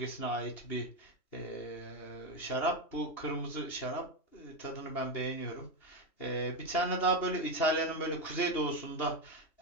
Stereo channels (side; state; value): right; late; 2.8 ms